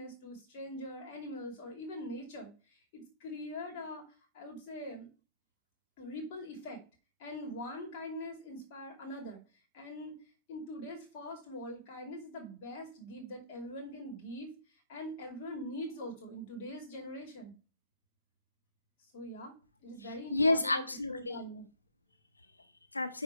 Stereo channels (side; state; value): both; inverted; correlation -0.64